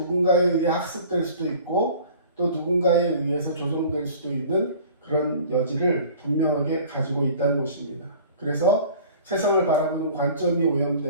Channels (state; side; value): inverted; both; correlation -0.46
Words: 의해 학습될 수도 있고 또 누군가에 의해서 조정될 수도 있는 그런 여지를 분명하게 가지고 있다는 것입니다. 그래서 세상을 바라보는 관점이